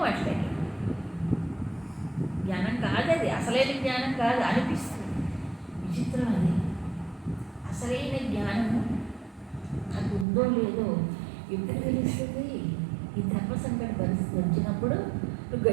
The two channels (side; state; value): left; drops out; at 10.2 s